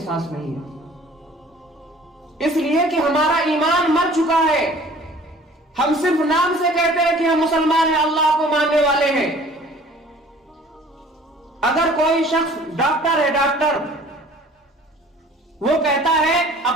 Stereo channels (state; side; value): normal; both; correlation 0.50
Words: نہیں ہے، اس لیے کہ ہمارا ایمان مر چکا ہے۔ ہم صرف نام سے کہتے ہیں کہ ہم مسلمان ہیں، اللہ کو ماننے والے ہیں۔ اگر کوئی شخص ڈاکٹر ہے، ڈاکٹر وہ کہتا ہے